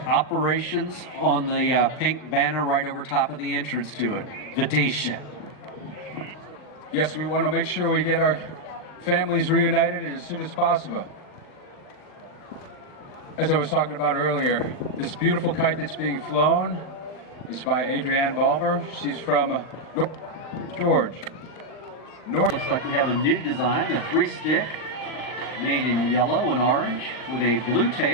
on the pink banner right over top of the entrance to it. Vidisha. Yes, we want to make sure we get our families reunited as soon as possible. As I was talking about earlier, this beautiful kite that's being flown is by Adrienne Balmer. She's from North George. Looks like we have a new design, a 3-stick made in yellow and orange with a blue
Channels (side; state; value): right; late; 39 ms